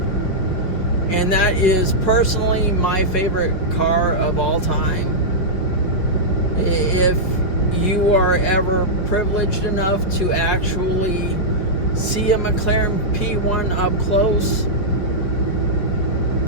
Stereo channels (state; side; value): late; right; 5.5 ms